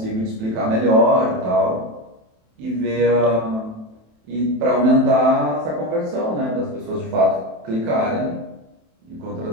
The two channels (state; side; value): late; left; 27 ms